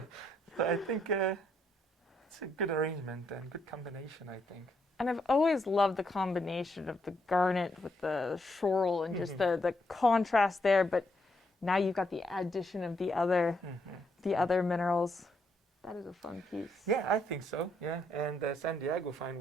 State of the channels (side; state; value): both; normal; correlation 0.76